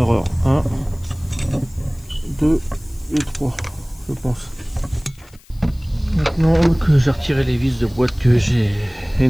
1, 2 et 3, je pense. Maintenant que j'ai retiré les vis de boîte que j'ai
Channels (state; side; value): noise; left; hiss, 27 dB below the sound